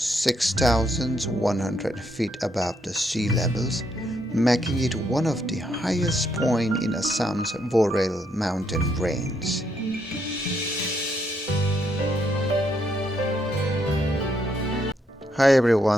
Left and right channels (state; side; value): normal; both; correlation 0.75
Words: feet above the sea levels, making it one of the highest points in Assam's Borail mountain range. Hi